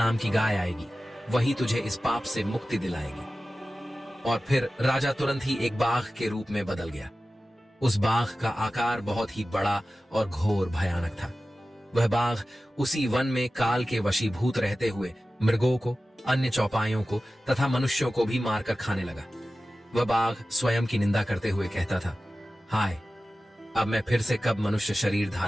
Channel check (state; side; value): normal; both; correlation 0.95